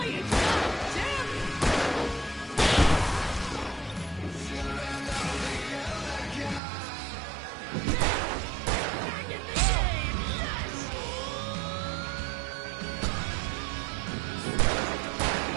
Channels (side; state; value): left; drops out; at 6.6 s